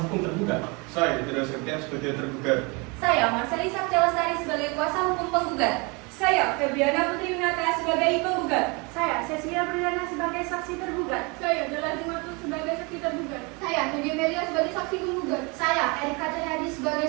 hukum tergugat. Saya Tidak Septian sebagai tergugat. Saya Marcelisa Celestari sebagai kuasa hukum penggugat. Saya Febriana Putri Winata sebagai penggugat. Saya Cecilia Berdana sebagai saksi tergugat. Saya Jalal Dimatu sebagai saksi tergugat. Saya Nadia Melia sebagai saksi penggugat. Saya Erika Triadi sebagai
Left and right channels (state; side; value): quieter; left; 29.2 dB